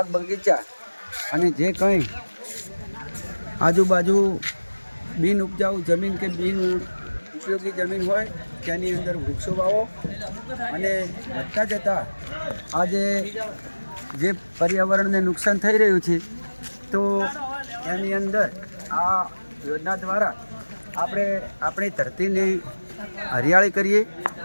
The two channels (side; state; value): both; inverted; correlation -1.00